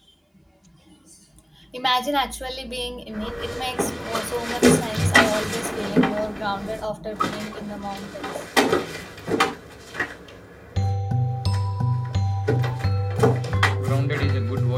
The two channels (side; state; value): both; identical; correlation 1.00